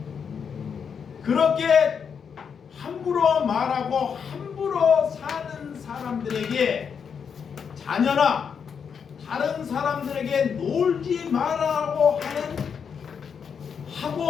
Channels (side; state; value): right; quieter; 6.8 dB